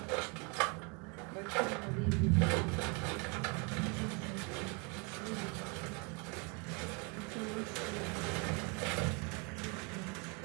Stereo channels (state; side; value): quieter; left; 32.4 dB